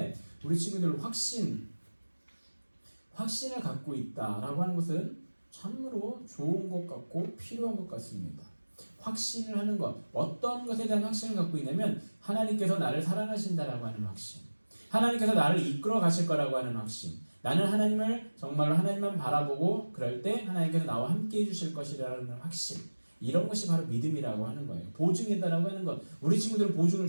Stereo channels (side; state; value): both; inverted; correlation -1.00